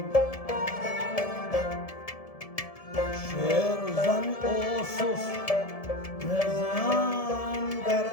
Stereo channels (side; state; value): right; late; 1.7 ms